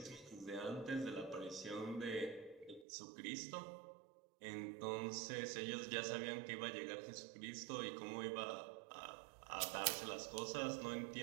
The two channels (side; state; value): left; drops out; at 2.9 s